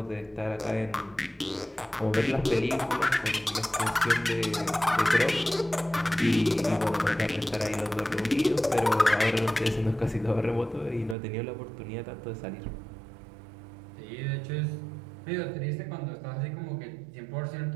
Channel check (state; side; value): drops out; left; at 11.2 s